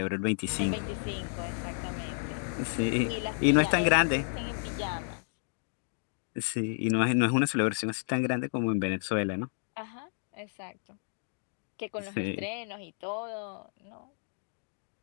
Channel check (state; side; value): silent; right; digital silence